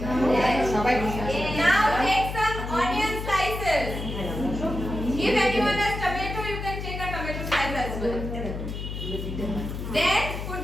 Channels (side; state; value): left; noise; hum, 6 dB below the sound